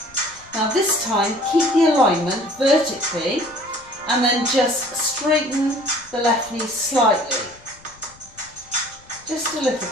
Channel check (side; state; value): left; noise; rumble, 26 dB below the sound